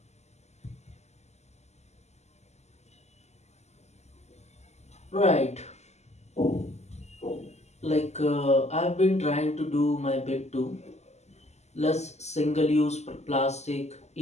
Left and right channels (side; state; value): right; late; 0.33 ms